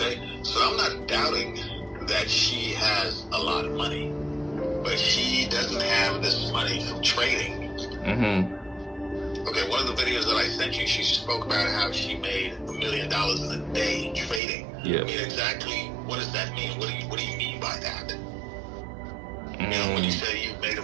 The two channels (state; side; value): drops out; left; at 14.4 s